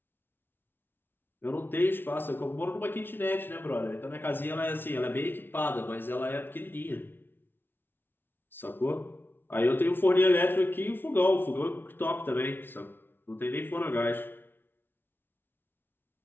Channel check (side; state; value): right; late; 0.10 ms